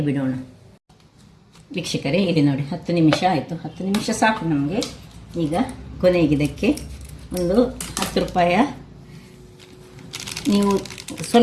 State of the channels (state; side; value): identical; both; correlation 1.00